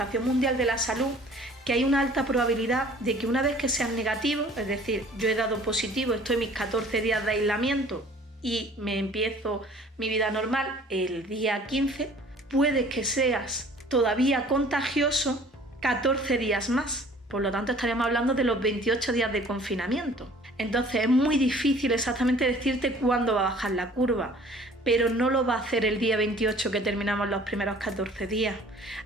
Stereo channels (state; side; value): normal; both; correlation 0.51